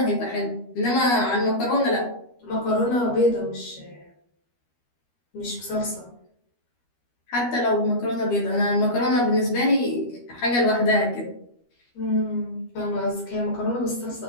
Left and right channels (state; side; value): late; right; 12 ms